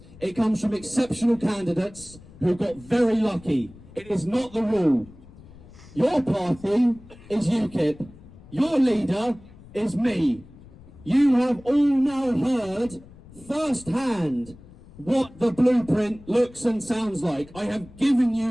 It comes from exceptional candidates who got very lucky. It is not the rule. Your party is UKIP. Your leader is me. You have all now heard firsthand what the blueprint looks and sounds like. I have given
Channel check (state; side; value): noise; left; rumble, 21 dB below the sound